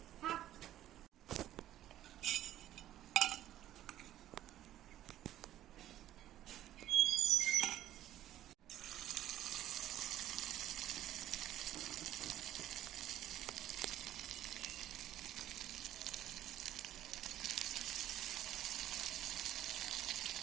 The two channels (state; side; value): quieter; left; 12.8 dB